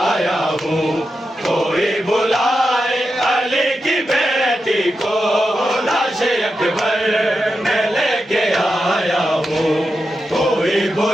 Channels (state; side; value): normal; both; correlation 0.89